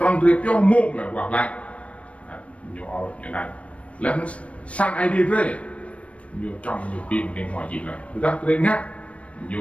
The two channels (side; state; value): right; late; 0.063 ms